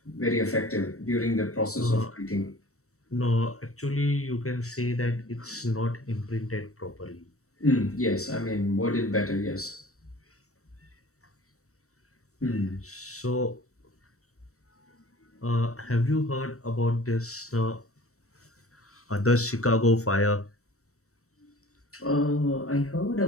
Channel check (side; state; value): right; late; 0.65 ms